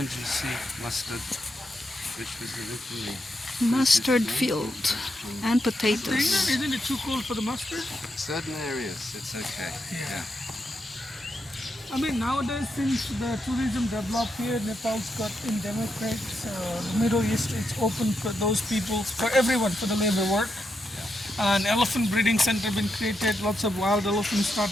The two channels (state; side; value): normal; both; correlation 0.83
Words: you see mustard, which was originally Mustard field and potatoes. Isn't it too cold for the mustard? certain areas it's okay. Yeah. I mean, nowadays since the tourism developed here, Nepal's got in democrats, the Middle East, it's open for those people, for everyone, for the labor work. An elephant breeding center been created, lots of wild elephants